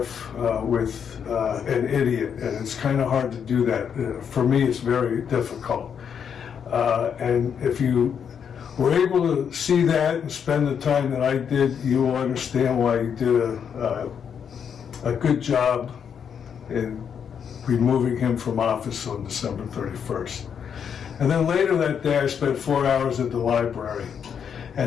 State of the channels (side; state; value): right; quieter; 7.6 dB